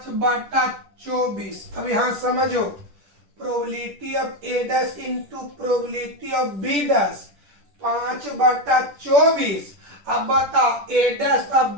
अब यहां समझो, probability of A dash into probability of B dash 5/24। अब बताओ ए डैश और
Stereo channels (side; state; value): left; late; 10 ms